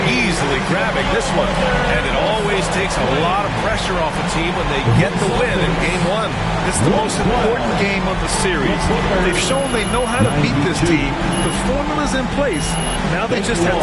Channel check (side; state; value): both; identical; correlation 1.00